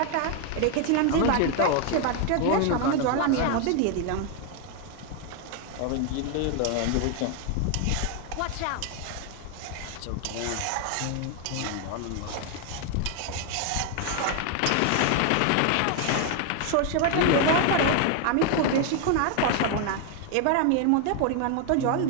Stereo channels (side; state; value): both; different; correlation 0.01